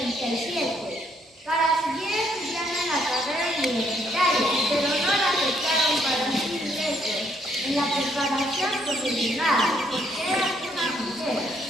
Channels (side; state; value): both; normal; correlation 0.69